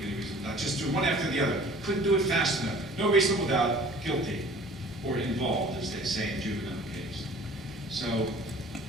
any reasonable doubt. Just do one after the other. Couldn't do it fast enough. No reasonable doubt, guilty, or involved, as they say in juvenile case. So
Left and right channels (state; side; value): normal; both; correlation 0.49